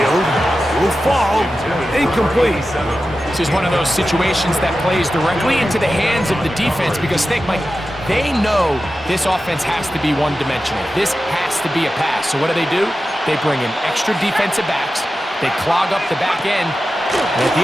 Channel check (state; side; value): normal; both; correlation 0.93